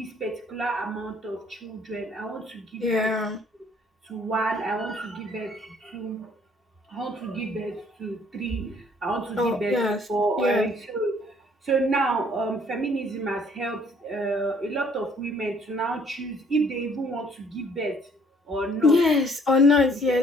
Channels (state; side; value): normal; both; correlation 0.61